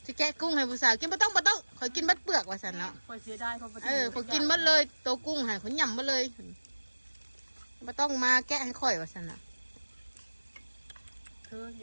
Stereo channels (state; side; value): inverted; both; correlation -1.00